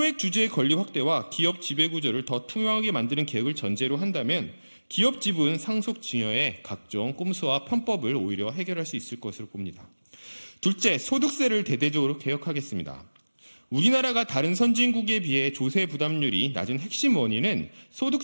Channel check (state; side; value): inverted; both; correlation -1.00